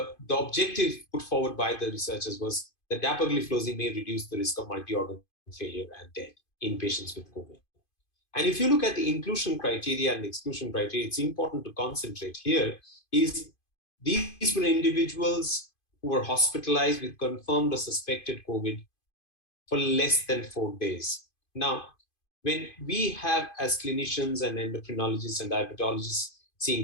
objective put forward by the researchers was that dapagliflozin may reduce the risk of multi-organ failure and death in patients with COVID. And if you look at the inclusion criteria and exclusion criteria, it's important to concentrate here is these were individuals who were hospitalized with confirmed or suspected COVID for less than 4 days. Now, when we have as clinicians and endocrinologists and diabetologists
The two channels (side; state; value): right; late; 2.5 ms